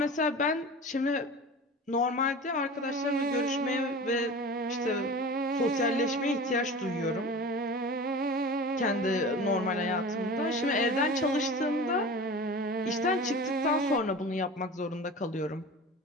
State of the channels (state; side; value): normal; both; correlation 0.34